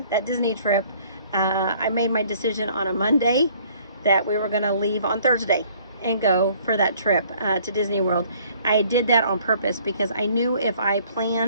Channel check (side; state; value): both; inverted; correlation -0.58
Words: that Disney trip. I made my decision on a Monday that we were going to leave on Thursday and go for that trip to Disney World. I did that on purpose because I knew if I